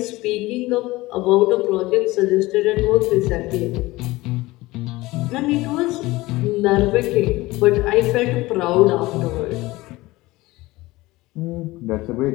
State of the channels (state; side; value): quieter; right; 19.7 dB